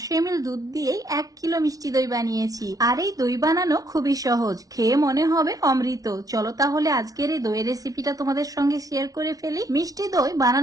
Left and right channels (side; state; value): left; late; 0.18 ms